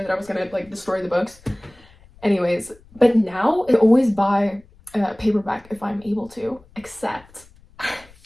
that I was gonna like destroy the books. Anyways, but now I always buy a paperback if I'm able to, except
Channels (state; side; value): noise; left; rumble, 27 dB below the sound